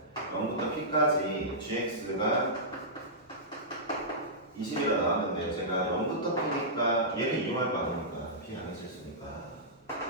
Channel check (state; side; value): normal; both; correlation -0.15